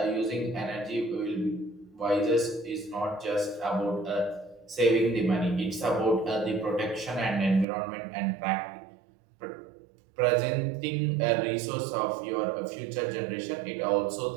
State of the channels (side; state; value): left; drops out; at 7.7 s